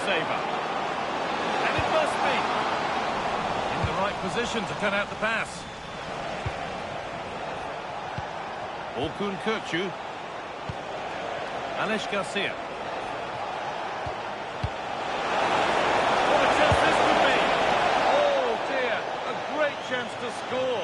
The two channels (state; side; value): identical; both; correlation 1.00